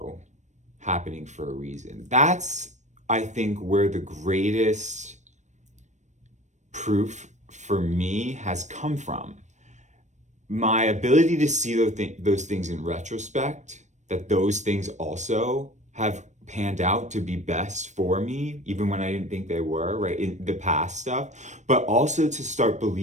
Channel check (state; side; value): late; left; 0.34 ms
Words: happening for a reason. That's, I think, where the greatest proof for me has come from. My ability to see those things in retrospect, that those things also have panned out to be best for me, even when I didn't think they were, right, in the past stuff, but also to start